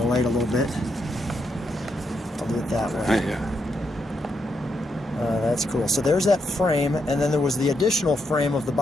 light a little bit. I'll do it that way. Yeah. That's cool. So there's that frame, and then there was the additional frame of the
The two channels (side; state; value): both; normal; correlation 0.80